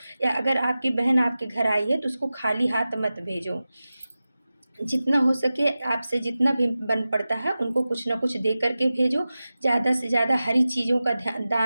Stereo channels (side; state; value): both; inverted; correlation -0.95